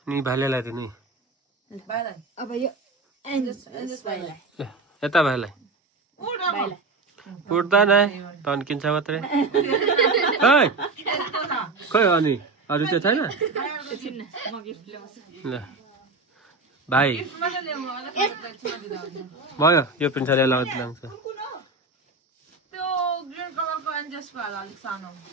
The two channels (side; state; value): left; quieter; 3.5 dB